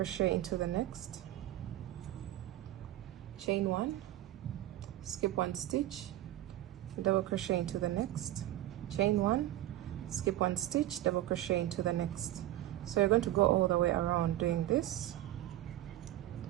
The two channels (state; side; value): quieter; left; 14.5 dB